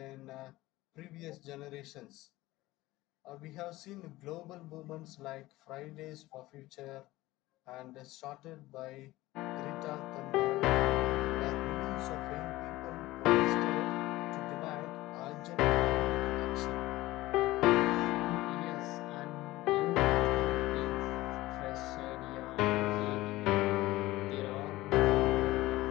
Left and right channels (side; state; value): right; quieter; 18.0 dB